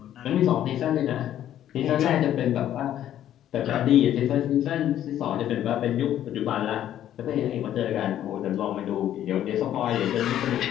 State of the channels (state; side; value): quieter; right; 11.5 dB